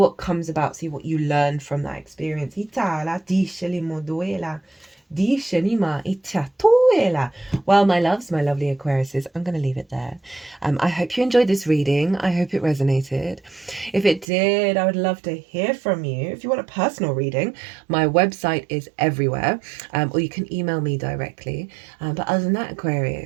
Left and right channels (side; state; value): left; drops out; at 14.2 s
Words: comes about, see what you learn from that experience. Well, my loves, my lovely Aquariuses, I'm going to leave it there. I hope you enjoyed this reading. I hope it resonated. If it did, I would love to hear from you. If you want a personal reading, my website is everywhere, or you can email me directly. But other than that,